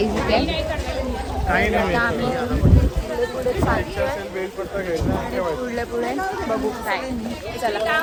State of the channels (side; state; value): both; identical; correlation 1.00